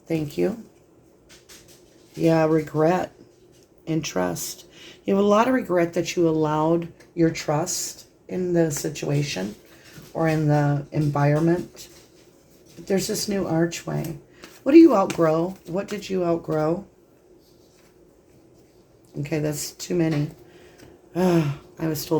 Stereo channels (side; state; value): both; identical; correlation 1.00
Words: thank you. Yeah, regret and trust. You have a lot of regret that you allowed your trust in the situation or in the environment. But there's this new archway. What do you outgrow? What did you outgrow? Okay, that's too many. I was